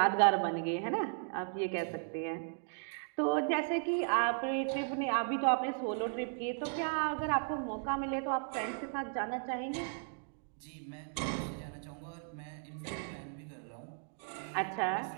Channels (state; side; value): silent; left; 54 dB below the other